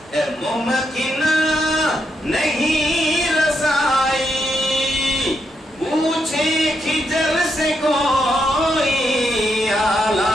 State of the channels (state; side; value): normal; both; correlation 0.80